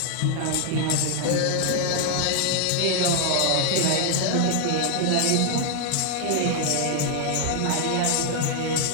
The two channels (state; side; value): different; both; correlation 0.00